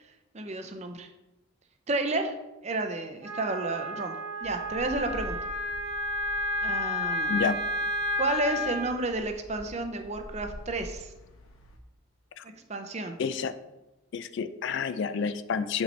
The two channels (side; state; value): both; normal; correlation 0.07